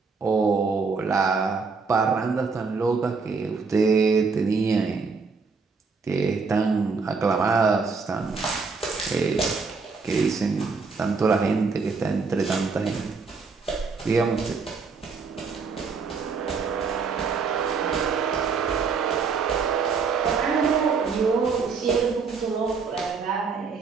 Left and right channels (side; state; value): left; quieter; 4.9 dB